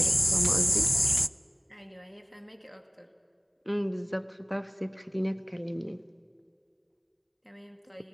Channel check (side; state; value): both; identical; correlation 1.00